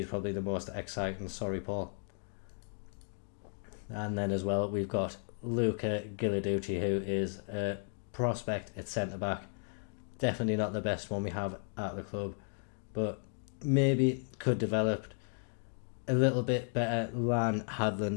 probably the most exciting. Sorry, Paul. And then as well, we've got Luca Gilarducci, who is a prospect at centre-back. Definitely not the best one we have at the club, but maybe could develop a little bit better than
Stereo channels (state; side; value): silent; right; 55 dB below the other